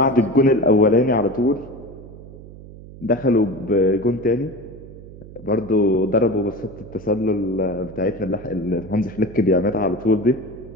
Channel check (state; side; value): noise; right; hum, 17 dB below the sound